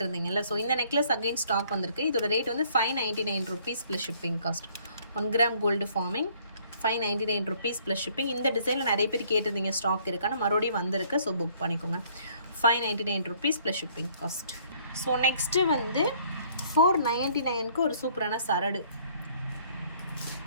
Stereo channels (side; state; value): both; inverted; correlation -0.61